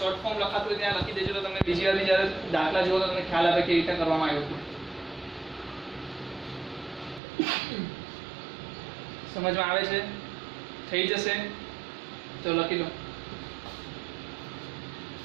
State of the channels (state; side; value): drops out; left; at 7.2 s